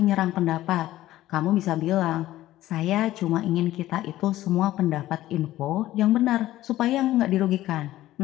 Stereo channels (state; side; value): quieter; right; 15.0 dB